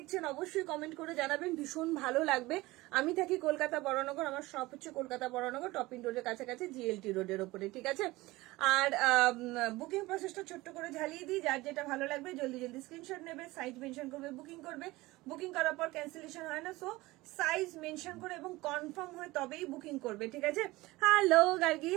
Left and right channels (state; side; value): quieter; left; 20.0 dB